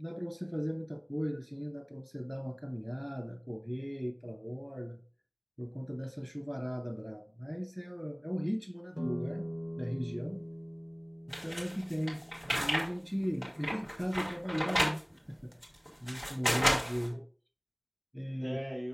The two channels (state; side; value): identical; both; correlation 1.00